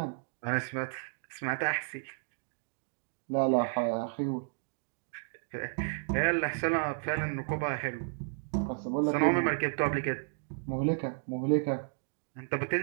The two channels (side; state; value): left; silent; digital silence